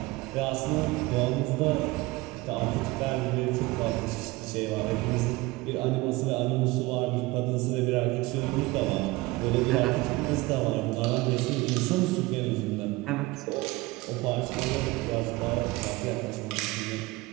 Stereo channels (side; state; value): left; quieter; 21.2 dB